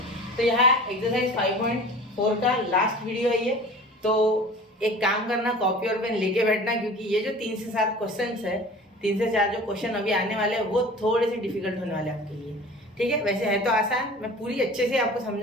तो यहाँ एक्सरसाइज 5.4 का लास्ट वीडियो है ये। तो एक काम करना, कॉपी और पेन लेके बैठना, क्योंकि ये जो 3 से 7 क्वेश्चन है, 3 से 4 जो क्वेश्चन अभी आने वाले हैं वो थोड़े से डिफिकल्ट होने वाले हैं आपके लिए। ठीक है, वैसे है तो आसान, मैं पूरी अच्छे से आपको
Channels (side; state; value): both; normal; correlation 0.41